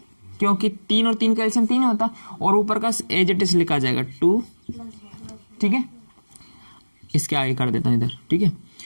क्योंकि 3 और 3 का एलसीएम 3 होता, और ऊपर का एज इट इज लिखा जाएगा 2, ठीक है। इसके आगे कर देता हूँ इधर, ठीक है।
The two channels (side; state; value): both; inverted; correlation -1.00